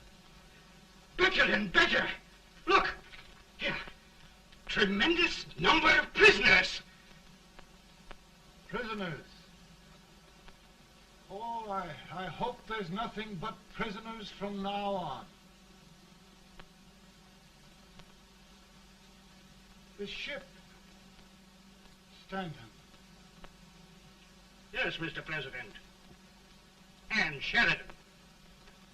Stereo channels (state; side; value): identical; both; correlation 1.00